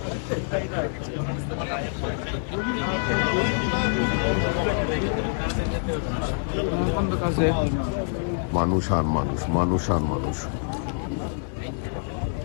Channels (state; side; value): silent; right; digital silence